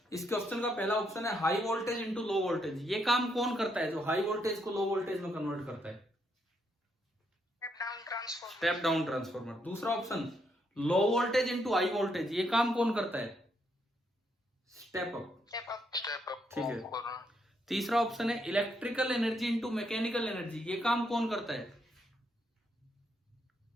इस क्वेश्चन का पहला ऑप्शन है high voltage into low voltage. ये काम कौन करता है जो हाई वोल्टेज को लो वोल्टेज में कन्वर्ट करता है? Step down transformer. दूसरा option low voltage into high voltage. ये काम कौन करता है? Step up. ठीक है। तीसरा ऑप्शन है electrical energy into mechanical energy. ये काम कौन करता है?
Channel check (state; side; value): normal; both; correlation 0.76